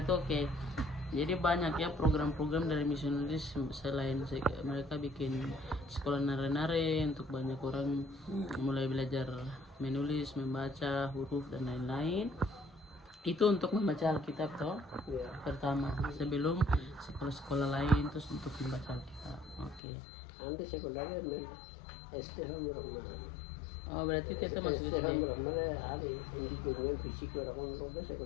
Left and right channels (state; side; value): drops out; right; at 19.8 s